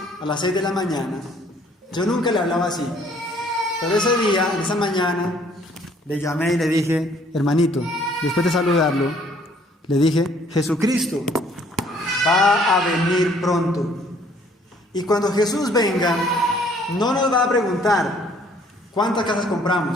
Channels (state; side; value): normal; both; correlation 0.60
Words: a las 6 de la mañana, yo nunca le hablaba así, pero ese día, en esa mañana, le llamé y le dije: hermanito, después de saludarlo, le dije: Jesucristo va a venir pronto. Y cuando Jesús venga, no nos va a preguntar cuántas casas